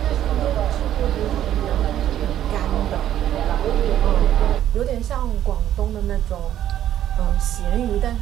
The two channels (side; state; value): left; quieter; 11.6 dB